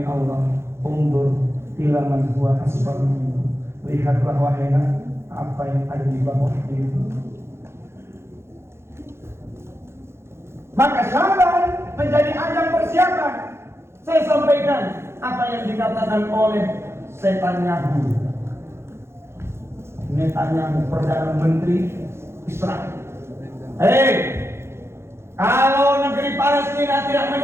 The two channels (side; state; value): left; late; 0.12 ms